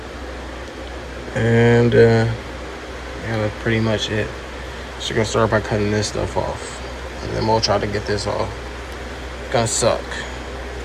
And yeah, that's pretty much it. So you're gonna start by cutting this stuff off, and then we'll try to get this off. It's gonna suck,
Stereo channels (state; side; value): identical; both; correlation 1.00